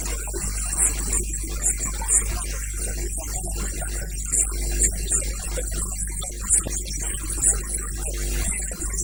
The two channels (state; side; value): identical; both; correlation 1.00